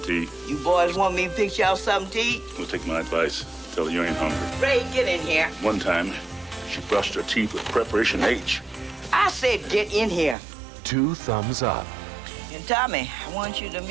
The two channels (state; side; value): drops out; left; at 10.4 s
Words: You boys want me to fix y'all something to eat? We'll take my advice. Tell her you ain't hungry. Ray, get in here. One time, she brushed her teeth with preparation H. I said get in here. 2 thumbs up. And Tommy, I want you to